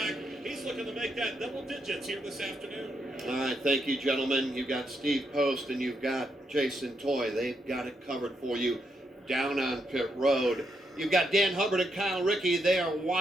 He's looking to make that double digits here this afternoon. All right, thank you, gentlemen. You've got Steve Post and you've got Jason Toy. They've got it covered for you down on pit road. You've got Dan Hubbard and Kyle Rickey. They are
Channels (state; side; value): normal; both; correlation 0.80